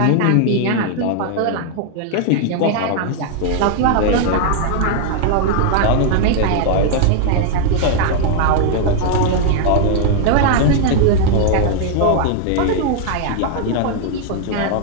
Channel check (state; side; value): different; both; correlation 0.00